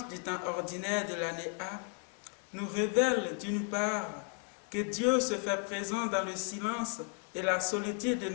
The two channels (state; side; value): quieter; right; 38.1 dB